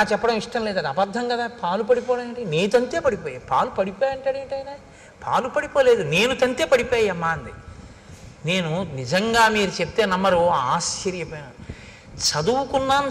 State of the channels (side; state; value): both; identical; correlation 1.00